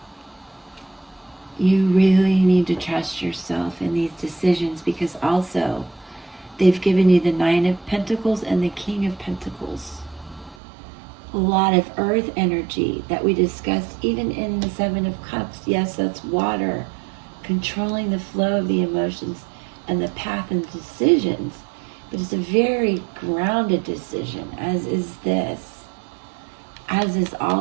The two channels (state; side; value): drops out; left; at 10.6 s